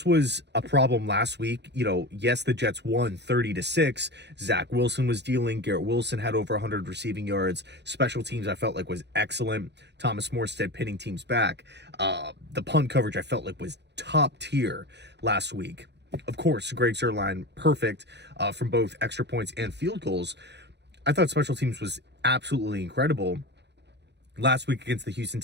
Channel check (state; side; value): late; left; 0.50 ms